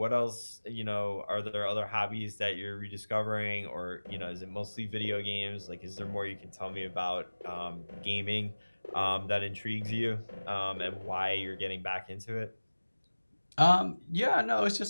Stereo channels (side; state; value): both; inverted; correlation -1.00